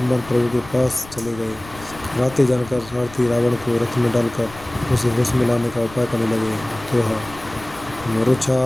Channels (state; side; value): noise; left; rumble, 18 dB below the sound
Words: प्रभु के पास चले गए। रातें जानकर सारथी रावण को रथ में डालकर उसे होश में लाने का उपाय करने लगे। दोहा मूर्छा